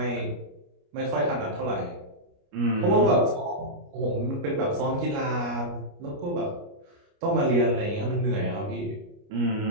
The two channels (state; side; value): late; left; 29 ms